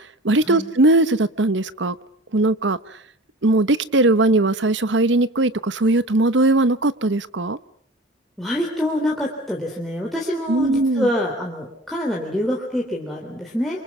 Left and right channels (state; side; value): normal; both; correlation 0.38